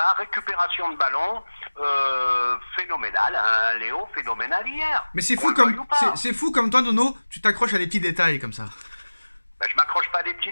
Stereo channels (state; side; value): inverted; both; correlation -1.00